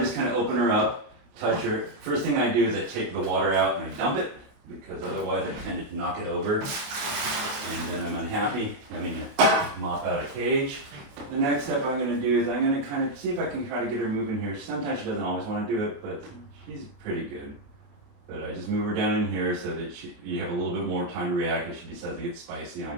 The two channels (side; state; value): left; late; 28 ms